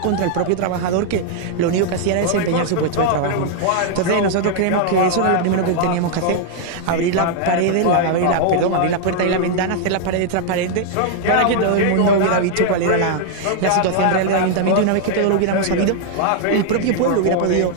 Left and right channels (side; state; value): both; different; correlation 0.00